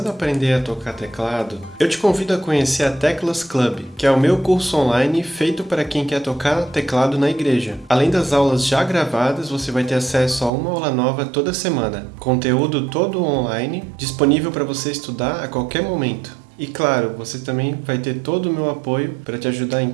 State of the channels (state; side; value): drops out; left; at 10.5 s